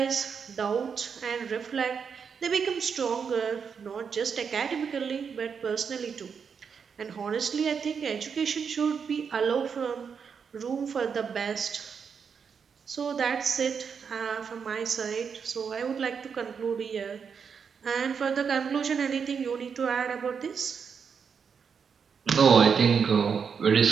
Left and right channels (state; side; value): quieter; left; 6.4 dB